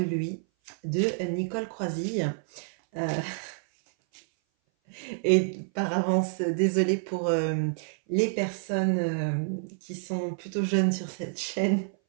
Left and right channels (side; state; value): left; silent; 57 dB below the other